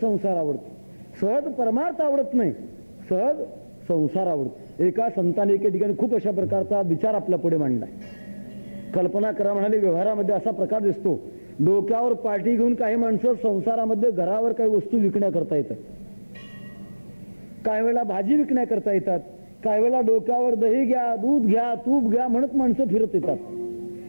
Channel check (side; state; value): both; inverted; correlation -1.00